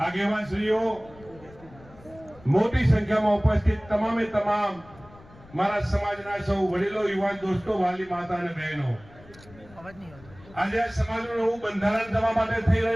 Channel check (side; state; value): left; noise; rumble, 23 dB below the sound